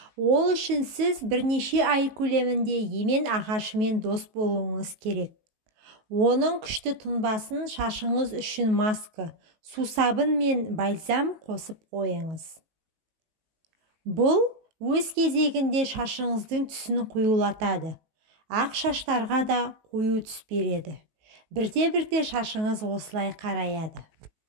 Ол үшін сіз бірнеше ай көлемінде емен ағашымен дос болуыңыз керек. Оның күшті тұнбасын шашыңыз үшін маска, сусабын мен бальзам қосып қойыңыз. Бұл өз кезегінде шашыңыздың түсін қоюлатады. Ақ шаштарға да қою түс береді. Бірте-бірте шашыңыз осылай қараяды.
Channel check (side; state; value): left; late; 19 ms